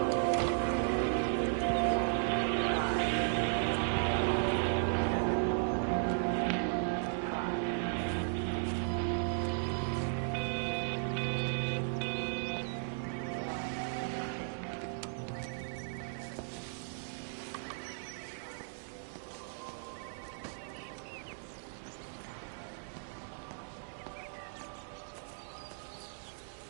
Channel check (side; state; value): left; silent; digital silence